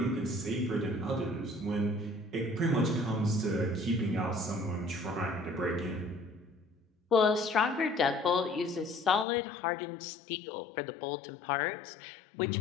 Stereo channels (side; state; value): right; drops out; at 9.2 s